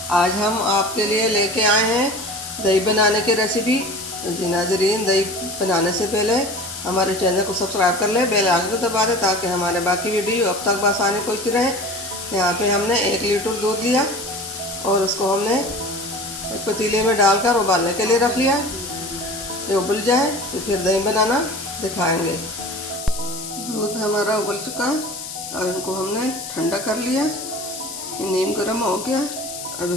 आज हम आपके लिए लेके आए हैं दही बनाने की रेसिपी। जी नाज़रीन, दही बनाने से पहले हमारे चैनल को सब्सक्राइब कर लें, बेल आइकन को दबा दें ताकि हमारे बाकी वीडियो अब तक आसानी पहुँचती रहे। यहाँ पे हमने 1 लीटर दूध लिया और उसको हमने एक पतीले में डालकर उबालने के लिए रख लिया। ये उबल जाए तो फिर दही बनाना दिखाएंगे। दूध हमारा उबल चुका है। अब इनको हमने ठंडा कर लिया, ये नीम गर्म हो गया। अब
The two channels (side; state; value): left; noise; hiss, 9 dB below the sound